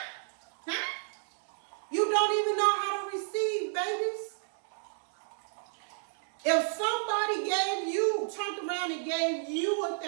You don't even know how to receive, babies. If somebody turned around and gave you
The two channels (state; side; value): silent; left; digital silence